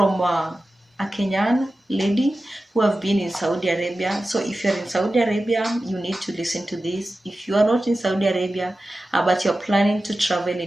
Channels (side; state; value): both; normal; correlation 0.94